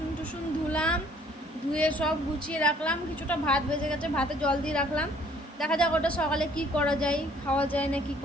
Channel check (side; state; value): both; normal; correlation 0.59